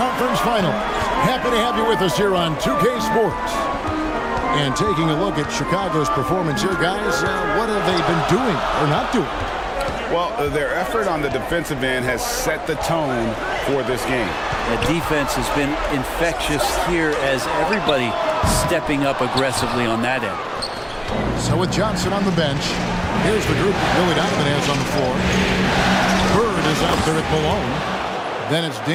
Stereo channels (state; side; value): identical; both; correlation 1.00